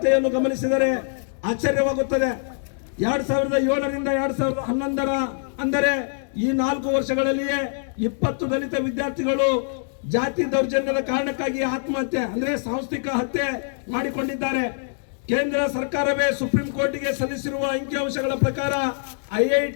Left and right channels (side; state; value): right; silent; digital silence